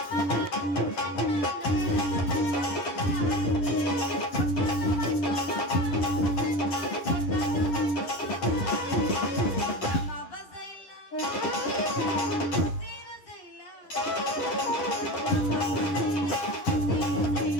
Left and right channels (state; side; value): late; right; 10 ms